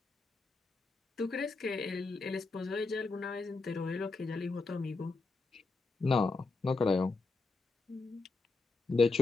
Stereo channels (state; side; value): quieter; right; 3.8 dB